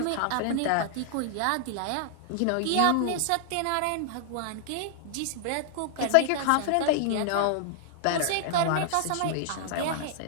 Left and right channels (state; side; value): different; both; correlation -0.01